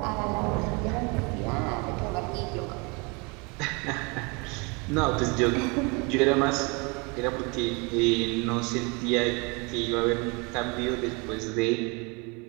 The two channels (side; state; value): left; quieter; 29.9 dB